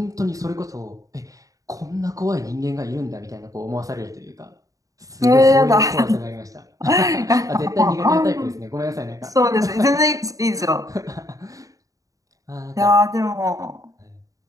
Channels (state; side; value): late; left; 0.16 ms